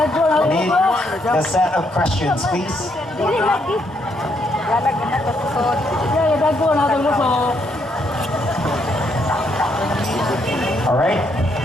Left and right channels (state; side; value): normal; both; correlation 0.74